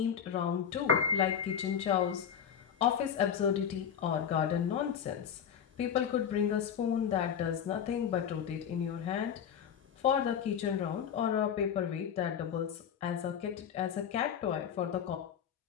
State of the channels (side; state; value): right; quieter; 8.3 dB